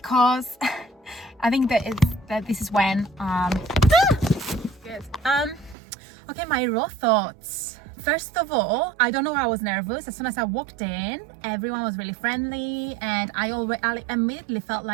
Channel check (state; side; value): drops out; left; at 5.8 s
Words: I think that this is when okay, my raw thoughts. First of all, I don't know why I was nervous. As soon as I walked in, everyone was really friendly and I immediately felt